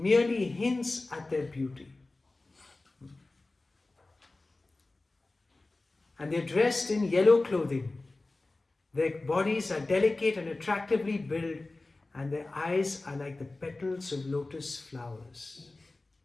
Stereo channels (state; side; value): quieter; right; 3.1 dB